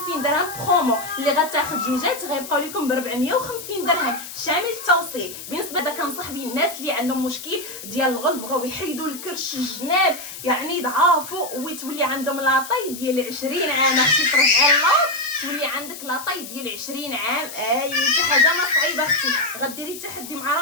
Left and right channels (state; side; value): noise; left; hiss, 12 dB below the sound